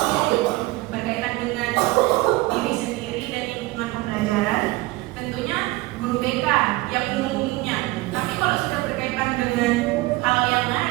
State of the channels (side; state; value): left; quieter; 20.5 dB